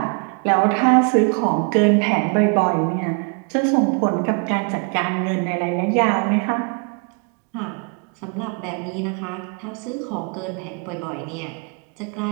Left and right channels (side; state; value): left; quieter; 37.7 dB